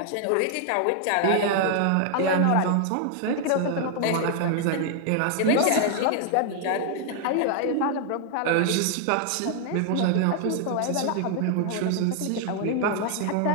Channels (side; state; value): both; different; correlation 0.00